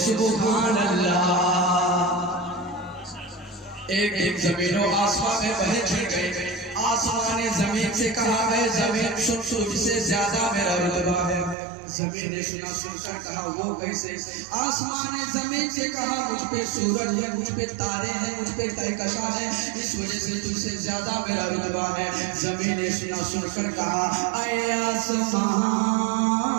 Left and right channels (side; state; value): left; drops out; at 11.6 s